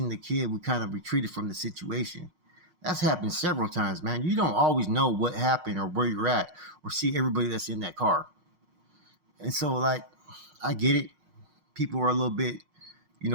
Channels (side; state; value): left; late; 5.5 ms